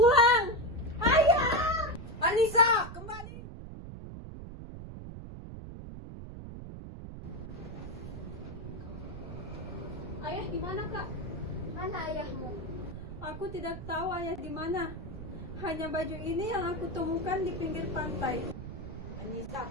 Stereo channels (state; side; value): noise; right; rumble, 10 dB below the sound